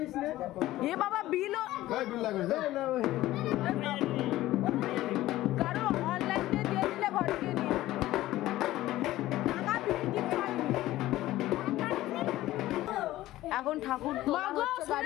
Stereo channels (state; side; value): quieter; right; 15.8 dB